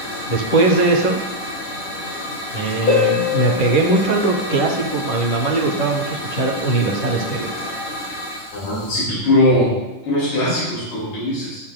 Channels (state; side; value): late; right; 10 ms